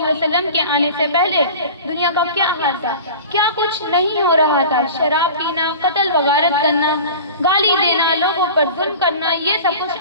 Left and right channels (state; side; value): inverted; both; correlation -0.37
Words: وسلم کے آنے سے پہلے دنیا کا کیا حال تھا، کیا کچھ نہیں ہو رہا تھا۔ شراب پینا، قتل و غارت کرنا، گالی دینا، لوگوں پر ظلم کرنا، یہ سب